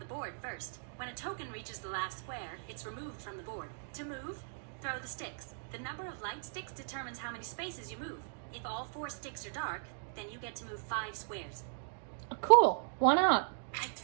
board first. When a token reaches the last square, it's removed from the board. To move, throw the sticks. The number of light sticks determines how many spaces you move. If all 4 sticks are dark, then you get to move 5 squares. Cool. Why not? I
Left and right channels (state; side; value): silent; left; digital silence